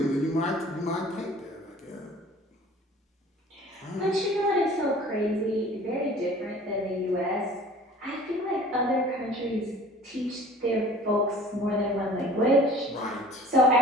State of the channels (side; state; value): both; normal; correlation 0.47